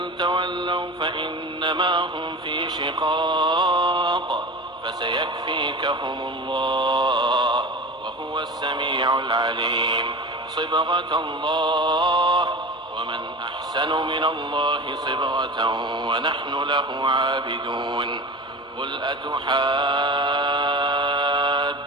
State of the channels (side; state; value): both; normal; correlation 0.32